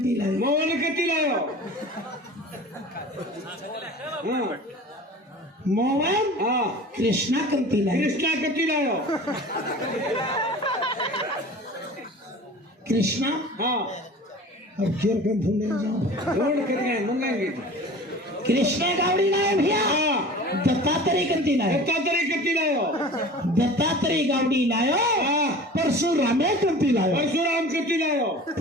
लायो मोहन कती लायो मोहन कृष्णा कंती लायो कृष्णा कती लायो कृष्णा अब फिर कम ढूंढने जाओ ढूंढ कर गए मंगाएंगे कृष्णा गावड़ी लायो भैया दत्तात्रेय कंती लायो दत्तात्रेय कती लायो दत्तात्रेय गावड़ी लायो परशुरामे कंती लायो परशुराम कती लायो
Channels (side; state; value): both; normal; correlation 0.40